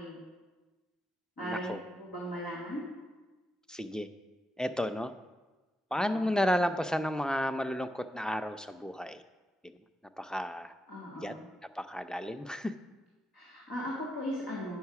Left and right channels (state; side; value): normal; both; correlation 0.85